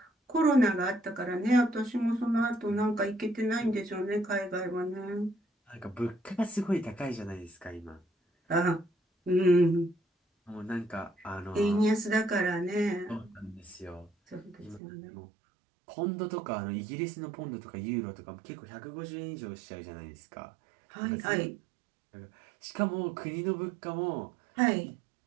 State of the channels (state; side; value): drops out; left; at 14.8 s